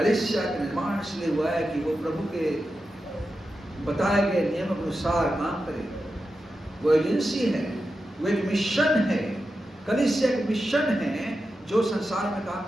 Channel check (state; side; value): normal; both; correlation 0.90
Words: का निर्माण इसलिए हुआ है कि वो प्रभु के बताए गए नियम के अनुसार काम करे। वो एजेंसी है, वो एक मिशन है। कलीसिया एक मिशन है जो संसार में काम